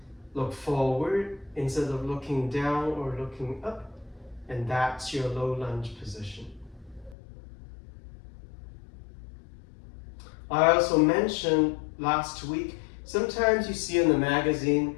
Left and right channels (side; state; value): right; drops out; at 7.2 s